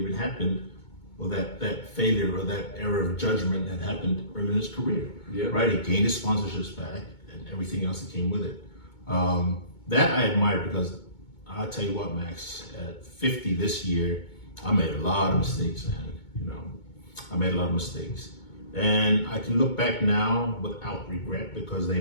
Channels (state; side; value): late; right; 2.2 ms